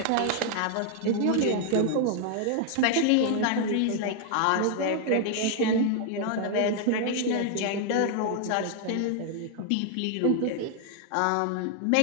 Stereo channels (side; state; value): both; different; correlation 0.00